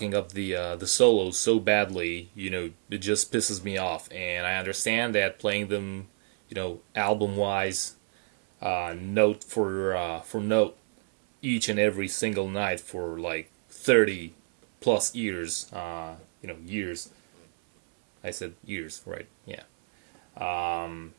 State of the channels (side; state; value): left; silent; 59 dB below the other